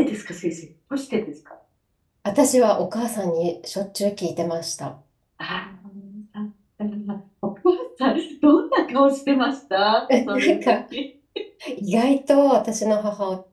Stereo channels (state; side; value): identical; both; correlation 1.00